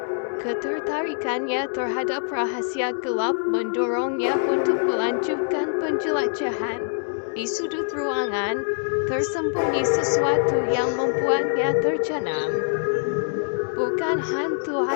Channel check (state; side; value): silent; right; 62 dB below the other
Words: ketertarikannya terhadap rahasia gelap mendorongnya untuk melanjutkan penjelajahan. Di sudut ruangan, tersembunyi sesuatu yang membuatnya tercengang. Bukan hantu